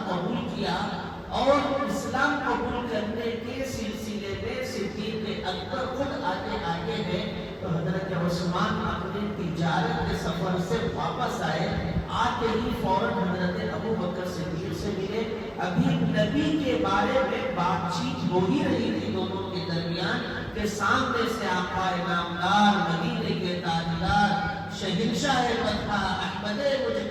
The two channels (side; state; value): both; identical; correlation 1.00